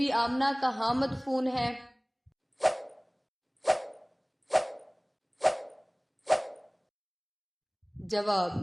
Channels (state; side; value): identical; both; correlation 1.00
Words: آمنہ کہاں مدفون ہے؟ جواب: